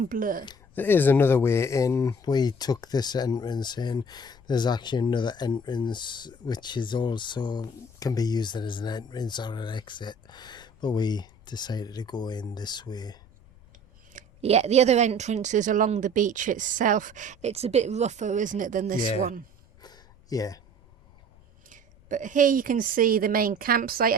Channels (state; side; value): noise; left; rumble, 26 dB below the sound